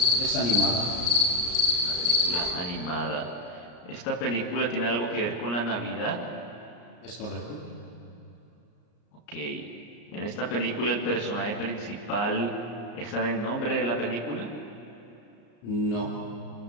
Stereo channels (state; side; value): late; right; 34 ms